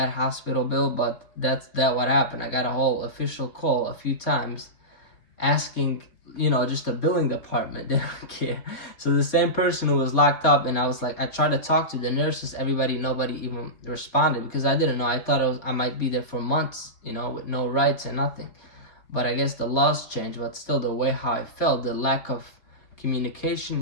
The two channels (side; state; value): right; late; 4.2 ms